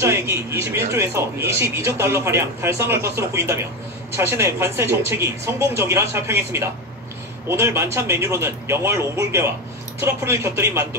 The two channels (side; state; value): both; normal; correlation 0.16